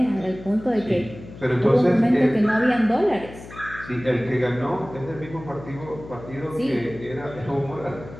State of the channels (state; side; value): noise; left; hum, 16 dB below the sound